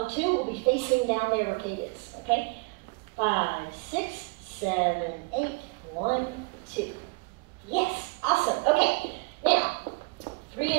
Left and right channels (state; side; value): quieter; left; 29.3 dB